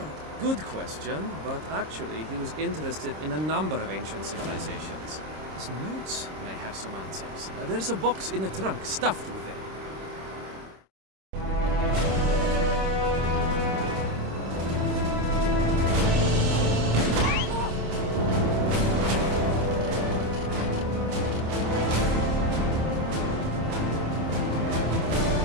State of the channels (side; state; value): left; late; 26 ms